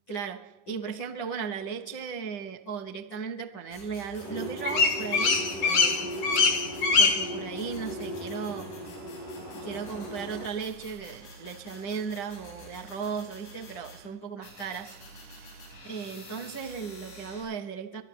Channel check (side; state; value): right; late; 11 ms